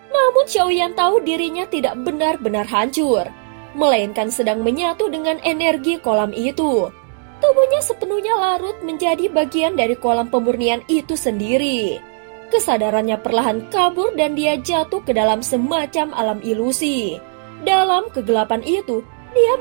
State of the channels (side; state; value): left; silent; digital silence